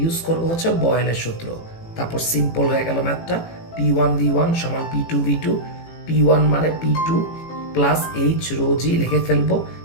ইউজ করব হচ্ছে বয়েলের সূত্র। তারপর সিম্পল হয়ে গেল ম্যাথটা, P1 V1 সমান P2 V2। P1 মানে P2 প্লাস H রো জি লিখে ফেলবো।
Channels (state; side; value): late; right; 18 ms